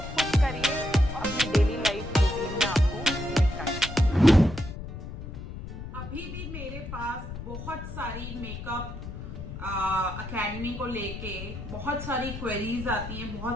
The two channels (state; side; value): noise; left; rumble, 9 dB below the sound